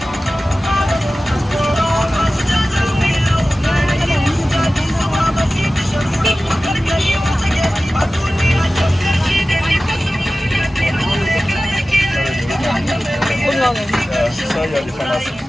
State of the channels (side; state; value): both; normal; correlation 0.95